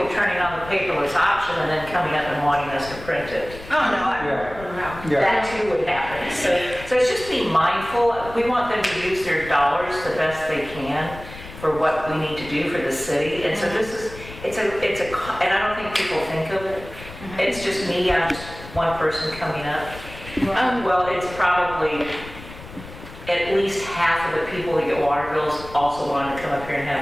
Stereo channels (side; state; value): left; noise; rumble, 15 dB below the sound